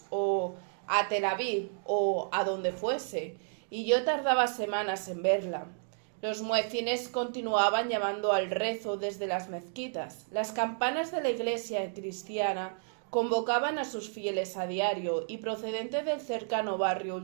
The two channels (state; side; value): silent; left; digital silence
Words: o a Tel Aviv, o a donde fuese, y yo tardaba semanas en verla. Los muecines continuaban llamando al rezo desde las mezquitas. Las campanas de la iglesia cristiana convocaban a sus fieles a diario, y procedente del cercano barrio